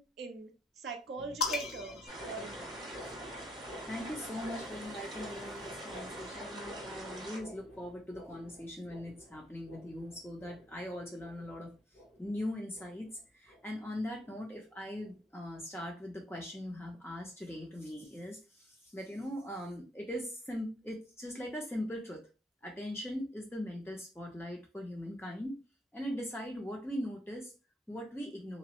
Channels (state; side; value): normal; both; correlation 0.71